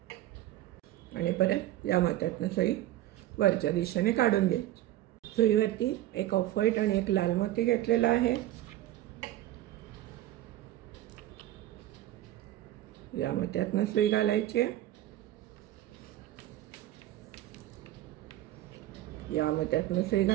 आणि परत या मोत्यातनं सुई वरच्या दिशेने काढून घ्यायची. सुईवरती 1 ऑफ व्हाईट आणि 1 लाल मोती घेतलेला आहे. या मोत्यातनं सुई घालायची, या मोत्यातनं सुई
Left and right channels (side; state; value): left; quieter; 14.3 dB